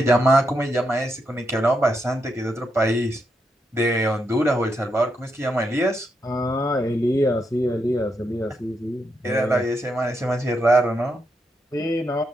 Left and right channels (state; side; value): normal; both; correlation 0.82